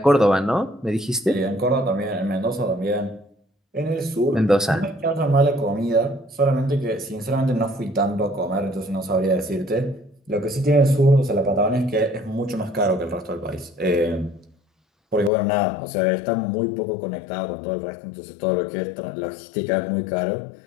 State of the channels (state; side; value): drops out; right; at 15.3 s